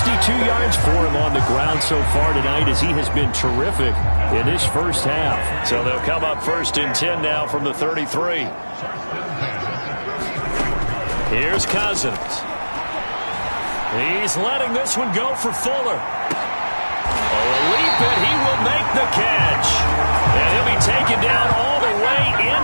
yards for him on the ground so far tonight as he has been terrific in this first half. So they'll come up 1st and 10 now from the 33. Here's Cousins. He's letting this one go for Fuller. Oh, a leap, and he will make the catch. And he'll be taken down all the way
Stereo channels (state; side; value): inverted; both; correlation -1.00